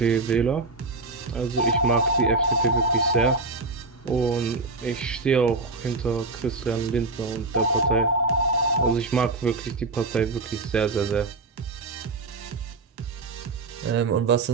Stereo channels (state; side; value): quieter; left; 3.5 dB